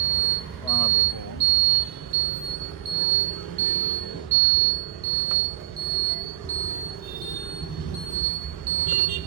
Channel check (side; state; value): left; quieter; 14.2 dB